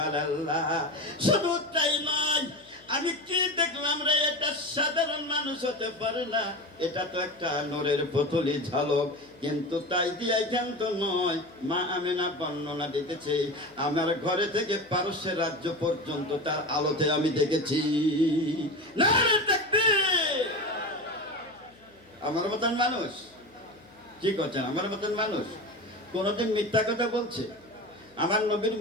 শুধু তাই নয়, আমি কি দেখলাম রে, এটা সাধারণ মানুষ হতে পারে না, এটা তো একটা নূরের পুতুলি ঝালক। কিন্তু তাই দিয়ে ক্ষান্ত নয়, মা আমিনা বর্ণনা দিতেছে, আমার ঘরে থেকে পারস্যের রাজ্য পর্যন্ত তার আলোতে আমি দেখেছি। নারে তাকবীর। আমার মতন মানুষ কি করছেন? আমার মতন মানুষ কোনদিন মিথ্যা কথা বলছে? আমার নবীর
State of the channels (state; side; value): noise; left; hum, 29 dB below the sound